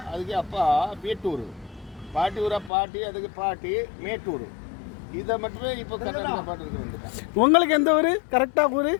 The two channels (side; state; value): right; drops out; at 2.7 s